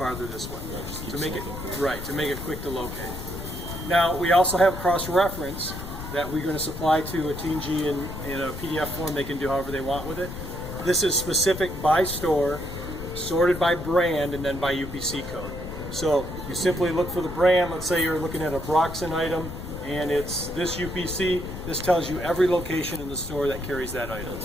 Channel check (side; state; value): left; noise; rumble, 9 dB below the sound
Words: this way. To make it quick to locate. Now we also have cross-reference that we're going to supply to a T&G in a PDF form. They can do however they want with it. This is specific by store, sorted by brand, and then by UPC code. So you simply look for the brand. Let's say you're looking at a Broxton item and it's this UPC. This tells you every location in the store that carries that item.